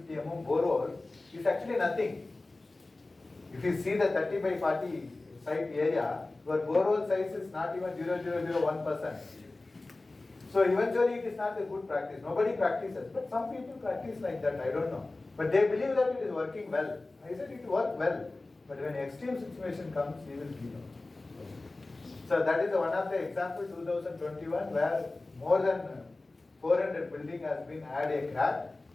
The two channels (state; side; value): quieter; right; 3.1 dB